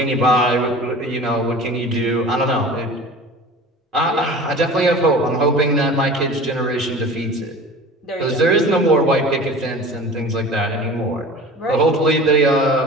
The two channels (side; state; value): both; normal; correlation 0.39